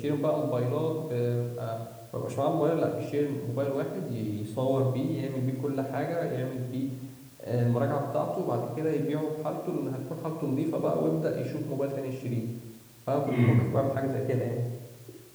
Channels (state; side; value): identical; both; correlation 1.00